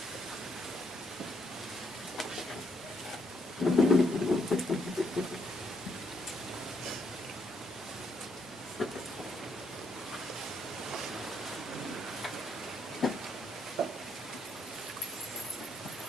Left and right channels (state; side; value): normal; both; correlation 0.73